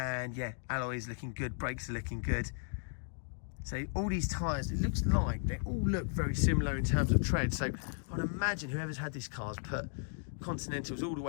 yeah, alloy is looking good, brakes are looking good. So all these tyres, it looks like they all look very similar in terms of tread. So I'd imagine whoever's had this car's put Continentals all the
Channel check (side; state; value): right; silent; 54 dB below the other